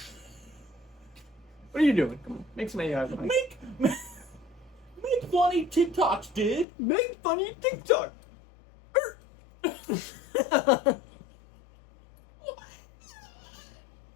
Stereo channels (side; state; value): right; drops out; at 6.7 s